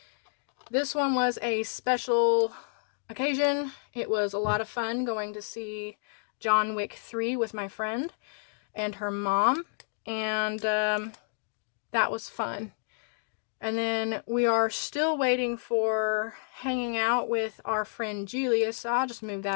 This one was a special occasion. It was a lot of fun going to see John Wick 3 with my friend and her mom, and that was fun. And then we are still waiting for hanging out with our friend Julia, so I'll just move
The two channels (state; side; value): silent; right; digital silence